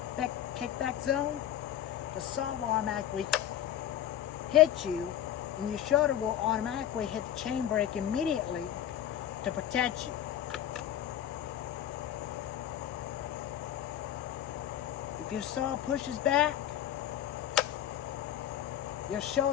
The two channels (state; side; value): quieter; right; 11.1 dB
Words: zone, the saw will automatically hit you, and your shoulder will automatically hit the chain brake immediately to protect you. If your saw pushes back, your